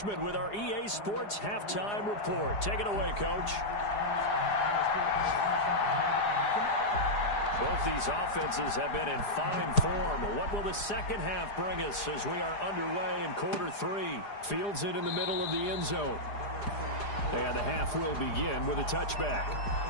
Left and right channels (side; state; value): right; late; 4.9 ms